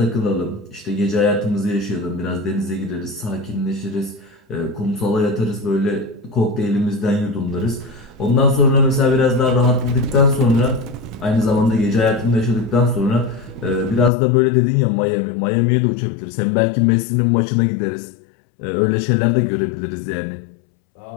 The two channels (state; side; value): drops out; right; at 14.1 s